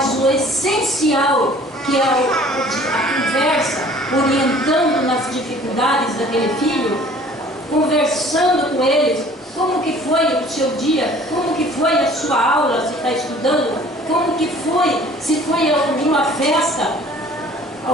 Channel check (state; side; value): normal; both; correlation 0.51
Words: o essencial, que é a conversa, orientando nas dificuldades daquele filho, conversando com eles, como que foi o seu dia, como que foi a sua aula, se está estudando, como que foi, se foi alguma festa,